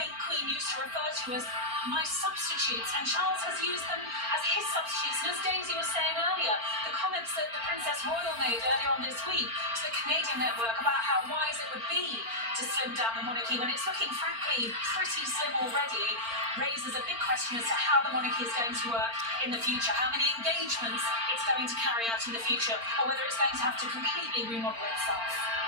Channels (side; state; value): left; late; 4.4 ms